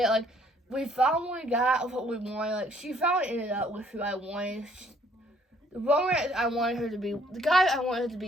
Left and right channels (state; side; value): normal; both; correlation 0.63